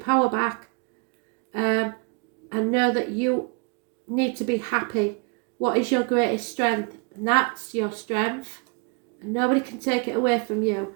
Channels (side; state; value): left; quieter; 34.0 dB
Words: back and know that you need to be happy. What is your greatest strength? And that's your strength, and nobody can take it away from you.